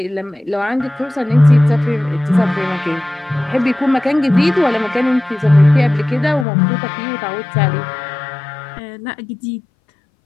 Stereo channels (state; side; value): drops out; right; at 6.5 s